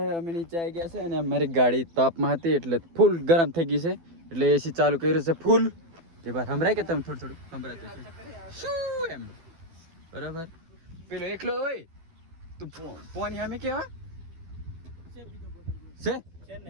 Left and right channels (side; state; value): left; late; 12 ms